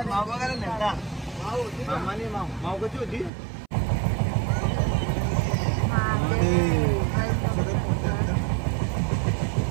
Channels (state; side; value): drops out; left; at 3.3 s